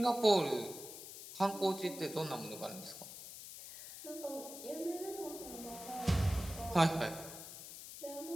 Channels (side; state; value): left; noise; hiss, 12 dB below the sound